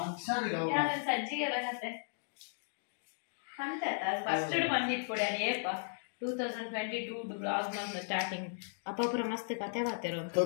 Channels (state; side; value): silent; right; digital silence